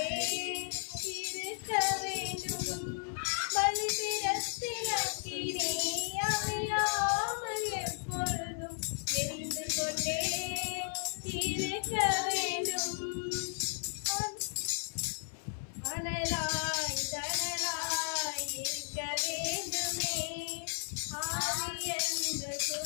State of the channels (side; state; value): right; silent; 55 dB below the other